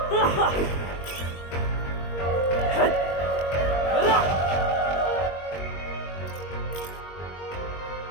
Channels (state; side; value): late; right; 22 ms